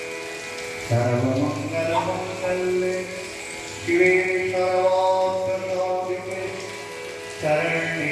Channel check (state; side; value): identical; both; correlation 1.00